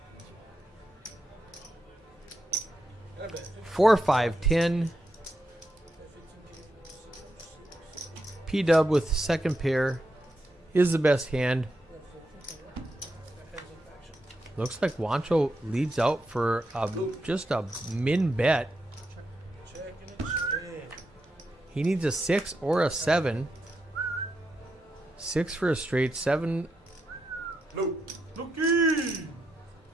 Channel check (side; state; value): both; normal; correlation 0.84